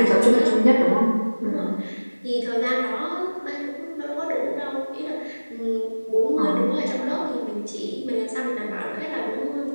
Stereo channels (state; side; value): inverted; both; correlation -1.00